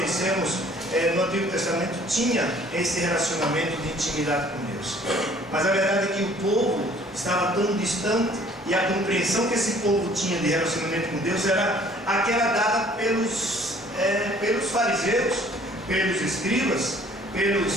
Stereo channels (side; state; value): both; normal; correlation 0.55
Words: no Antigo Testamento tinha esse relacionamento de intimidade com Deus. Mas a verdade é que o povo estava tão distante, e a compreensão que esse povo tinha de relacionamento com Deus era aquela dada pelos fariseus, pelos escribas, pelos